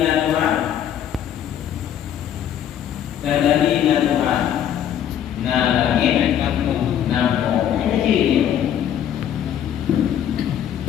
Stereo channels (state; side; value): quieter; right; 10.0 dB